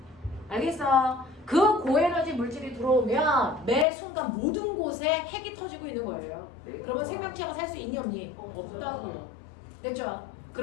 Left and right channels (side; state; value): right; drops out; at 3.9 s